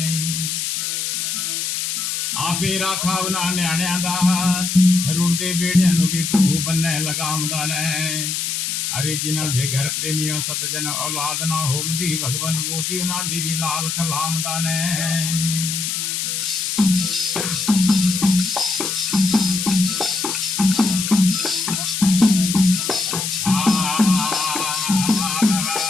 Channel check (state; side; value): noise; left; hiss, 2 dB below the sound